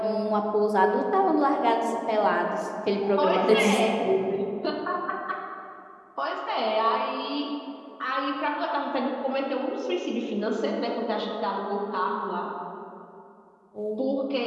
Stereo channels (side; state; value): both; identical; correlation 1.00